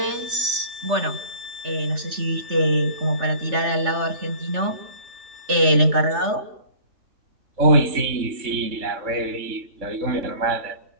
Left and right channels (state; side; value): late; left; 3.3 ms